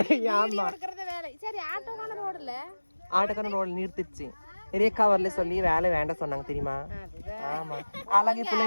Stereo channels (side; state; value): both; inverted; correlation -1.00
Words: ஆட்டோக்காரன் ரோட்ல நிறுத்திடுச்சு. ரேகா வரல சொல்லி வேலை வேண்டாம் சொன்னாங்க தெரியுமா? ஆமா அழகி